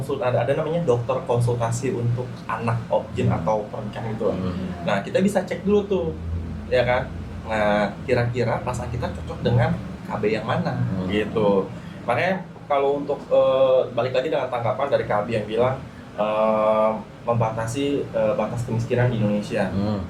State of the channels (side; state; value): both; identical; correlation 1.00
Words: ada namanya dokter konsultasi untuk anak objin atau pernikahan itu. Nah, kita bisa cek dulu tuh, ya kan. Nah, kira-kira pasangan kita cocok dengan KB yang mana gitu. Makanya kalau untuk balik lagi dengan tanggapan dari KB yang bilang membatasi batas kemiskinan di Indonesia.